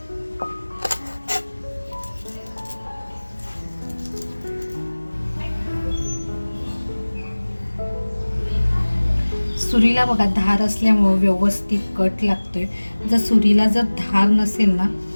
सुरीला बघा धार असल्यामुळं व्यवस्थित कट लागतोय. सुरीला जर धार नसेल ना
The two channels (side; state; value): both; inverted; correlation -1.00